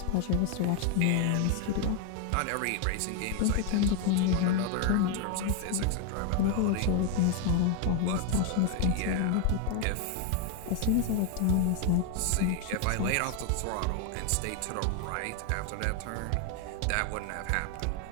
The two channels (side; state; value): both; different; correlation 0.01